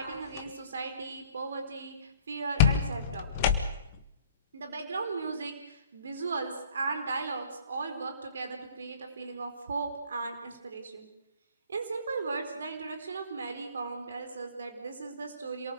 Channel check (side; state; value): both; inverted; correlation -0.52